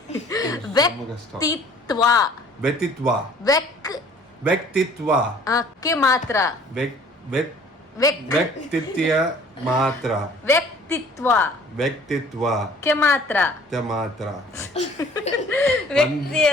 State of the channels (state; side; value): normal; both; correlation 0.53